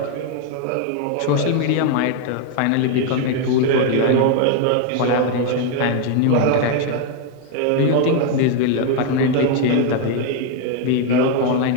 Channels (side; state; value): both; different; correlation 0.01